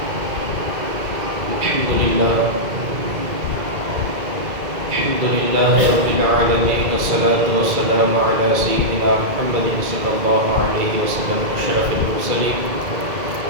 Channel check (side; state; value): left; late; 2.1 ms